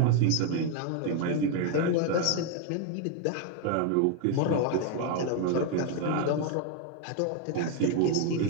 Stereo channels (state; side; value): different; both; correlation 0.01